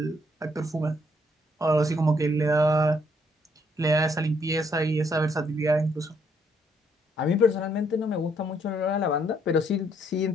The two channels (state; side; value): normal; both; correlation 0.70